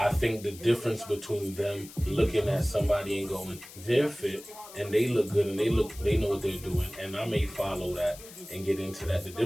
think the difference between them looking at somebody and going, they're fit and they look good and they know what they're doing, and I may follow that and get into that. The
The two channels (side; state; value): left; noise; hiss, 17 dB below the sound